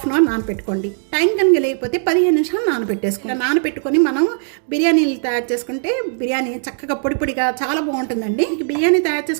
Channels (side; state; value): left; silent; digital silence